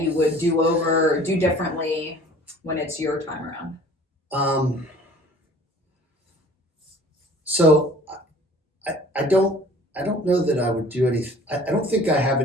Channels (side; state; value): both; normal; correlation 0.49